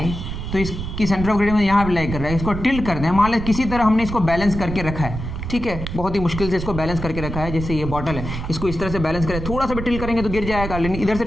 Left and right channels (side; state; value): right; noise; rumble, 7 dB below the sound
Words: तो इसकी सेंटर ऑफ ग्रेविटी में यहाँ पे लाई कर रहा है, इसको टिल्ट कर दें, मान लें किसी तरह हमने इसको बैलेंस करके रखा है, ठीक है, बहुत ही मुश्किल से इसको बैलेंस करके रखा है। जैसे ये बॉटल है, इसको इस तरह से बैलेंस करें, थोड़ा सा भी टिल्ट करेंगे तो गिर जाएगा, लेकिन इधर से